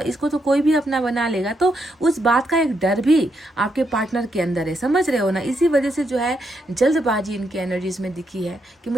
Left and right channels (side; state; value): both; normal; correlation 0.80